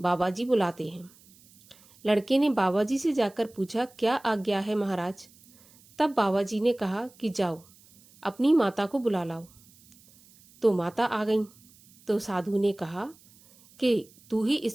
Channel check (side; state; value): right; noise; hiss, 27 dB below the sound